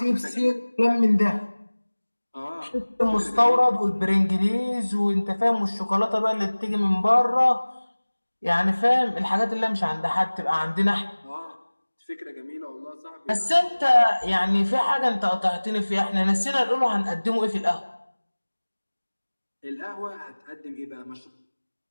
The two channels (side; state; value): both; inverted; correlation -1.00